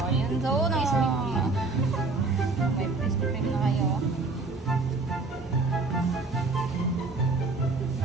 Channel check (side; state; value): left; quieter; 3.6 dB